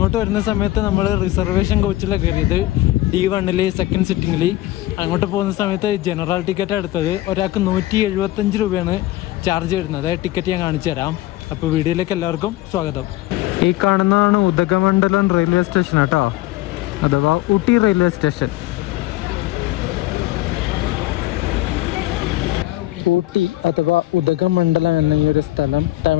വരുന്ന സമയത്ത് നമ്മൾ റിസർവേഷൻ കോച്ചിലാണ് കയറിയത്. D1 second സിറ്റിങ്ങിൽ. അങ്ങോട്ട് പോകുന്ന സമയത്ത് ജനറൽ ടിക്കറ്റ് എടുത്തത്. ഒരാൾക്ക് 175 രൂപയാണ് ചാർജ് വരുന്നത്. ടിക്കറ്റ് ഞാൻ കാണിച്ചു തരാം. അപ്പോൾ വീഡിയോയിലേക്ക് എല്ലാവർക്കും സ്വാഗതം. ഈ കാണുന്നതാണ് ഉദകമണ്ഡലം റെയിൽവേ സ്റ്റേഷൻ കേട്ടോ, അഥവാ ഊട്ടി റെയിൽവേ സ്റ്റേഷൻ. ഊട്ടി അഥവാ ഉദകമണ്ഡലം എന്ന ഈ ഒരു സ്ഥലം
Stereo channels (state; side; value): quieter; right; 17.0 dB